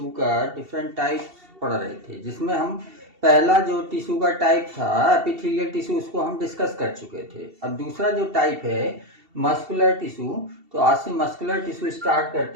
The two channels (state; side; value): late; left; 2.7 ms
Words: का डिफरेंट टाइप पढ़ रहे थे, जिसमें हम पहला जो टिश्यू का टाइप था एपिथेलियल टिश्यू, उसको हम डिस्कस कर चुके थे। अब दूसरा जो टाइप है मस्कुलर टिश्यू, तो आज से मस्कुलर टिश्यू स्टार्ट